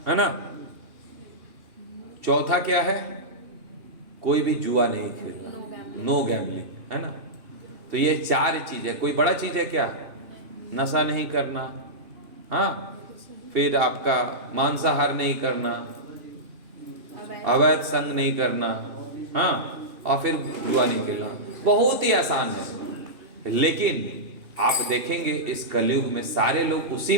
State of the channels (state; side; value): late; left; 2.8 ms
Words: है ना। चौथा क्या है? कोई भी जुआ नहीं खेलना, नो गैम्बलिंग, है ना। तो ये 4 चीज है। कोई बड़ा चीज है क्या? नशा नहीं करना, हाँ, फिर आपका मांसाहार नहीं करना, अवैध संग नहीं करना, हाँ, और फिर जुआ नहीं खेलना। बहुत ही आसान है। लेकिन आप देखेंगे इस कलयुग में सारे लोग उसी